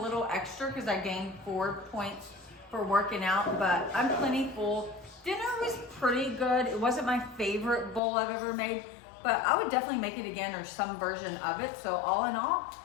little extra because I gained 4 points for working out, but I'm plenty full. Dinner was pretty good. It wasn't my favorite bowl I've ever made, but I would definitely make it again or some version of it. So all in all,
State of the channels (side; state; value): right; drops out; at 8.0 s